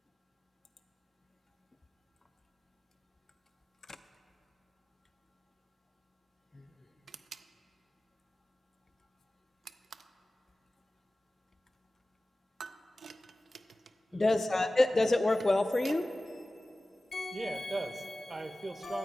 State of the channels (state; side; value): normal; both; correlation 0.97